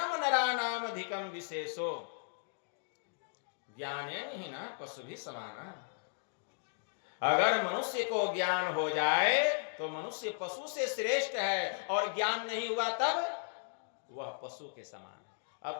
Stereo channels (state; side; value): silent; right; digital silence